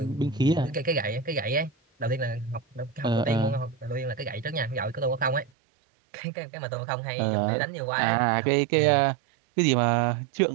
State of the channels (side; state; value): left; drops out; at 5.5 s